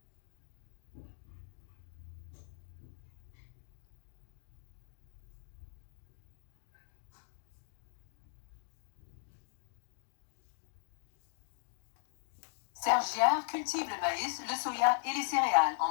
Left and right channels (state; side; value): silent; right; digital silence